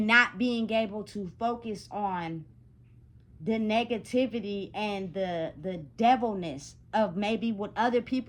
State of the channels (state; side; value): identical; both; correlation 1.00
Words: not being able to focus on the negativity and the devilness of maybe what other